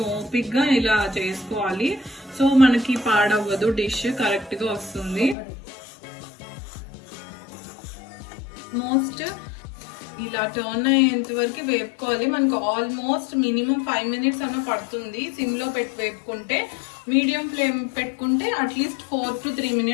ఓపిక్ గా ఇలా చేసుకోవాలి. సో మనకి పాడవ్వదు, డిష్ కరెక్ట్ గా వస్తుంది. మోస్ట్ ఇలా టర్న్ అయ్యేంత వరకు వేపుకోవాలి. మనకు ఆల్మోస్ట్ మినిమం 5 minutes అన్న పడుతుంది సిమ్ లో పెట్టి వేపుకుంటే. మీడియం ఫ్లేమ్ పెట్టుకుంటే అట్లీస్ట్ 4 to 3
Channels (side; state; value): right; drops out; at 5.4 s